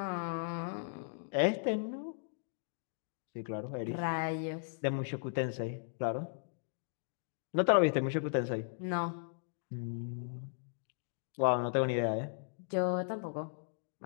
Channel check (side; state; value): right; silent; digital silence